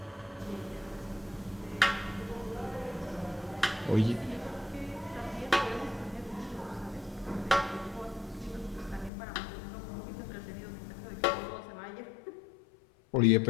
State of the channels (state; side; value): drops out; right; at 9.1 s